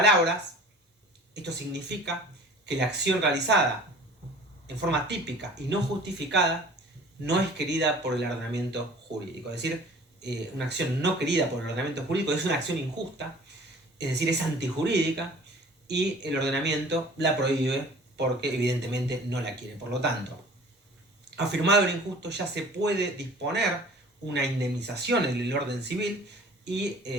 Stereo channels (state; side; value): normal; both; correlation 0.46